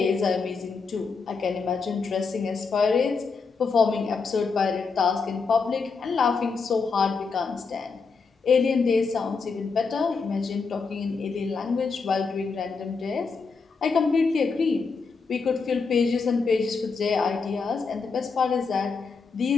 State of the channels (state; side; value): quieter; right; 4.8 dB